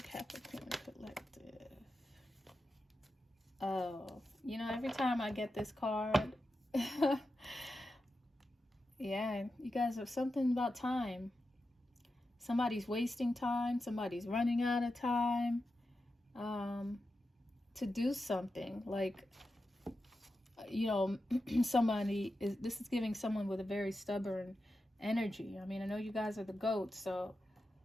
Capricorn collective. Oh, you know, every time I get this card... Yeah, you guys have something about time. Somebody's wasting time. Somebody's running out of time to do something. Like, you know, this is giving someone with a very stubborn energy. I mean, I know you guys are the goats, so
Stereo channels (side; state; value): both; normal; correlation 0.90